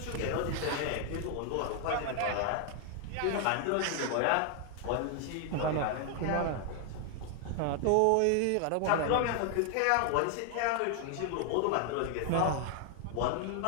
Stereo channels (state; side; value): different; both; correlation 0.00